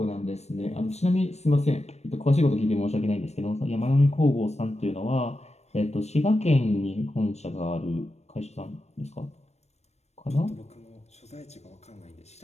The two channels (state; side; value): late; right; 0.31 ms